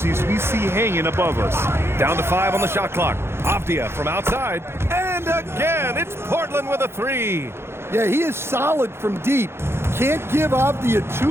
we see hanging above us. Down to 5 on the shot clock. Avdia from outside. And again, it's Portland with a 3. Yeah, he is solid from deep. Can't give Avdia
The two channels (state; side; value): late; left; 0.12 ms